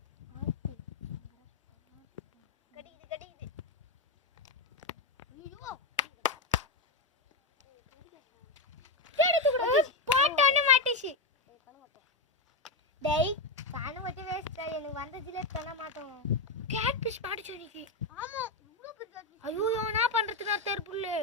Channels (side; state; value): right; quieter; 3.2 dB